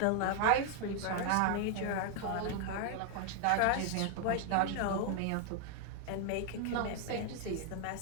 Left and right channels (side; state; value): both; different; correlation 0.00